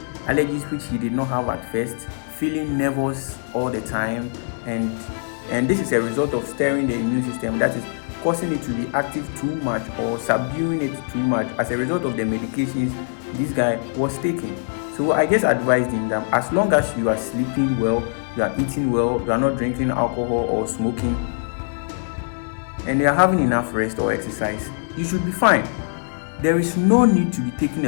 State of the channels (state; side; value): silent; right; digital silence